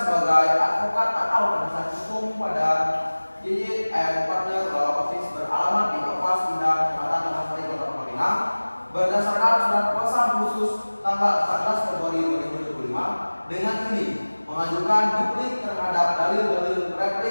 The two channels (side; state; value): both; inverted; correlation -1.00